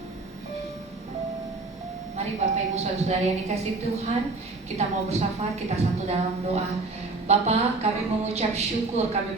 Mari Bapak Ibu Saudara yang dikasihi Tuhan, kita mau bersyafaat, kita satu dalam doa. Bapa, kami mengucap syukur, kami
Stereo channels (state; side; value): quieter; left; 3.5 dB